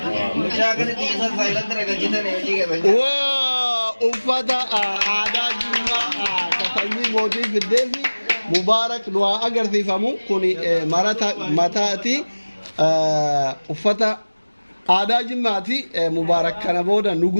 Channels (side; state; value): both; inverted; correlation -1.00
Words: mujagan tisa silent rega jita ne ji ke wa ufada ada juma katani modi gideli mubarak dua agar tifamu kuni marata matati ufata ada jimati mubarak kana boda